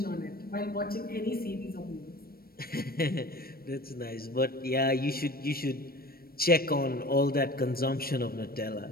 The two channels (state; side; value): late; right; 0.44 ms